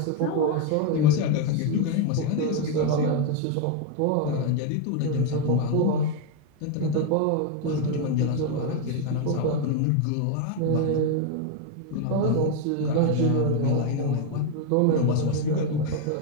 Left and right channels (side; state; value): both; different; correlation 0.01